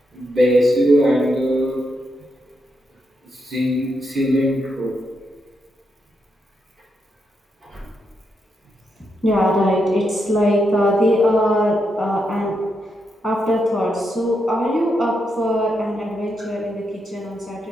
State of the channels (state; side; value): normal; both; correlation 0.82